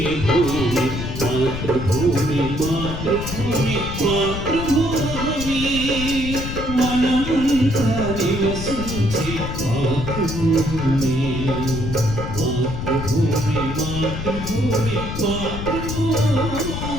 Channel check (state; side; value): noise; left; rumble, 5 dB below the sound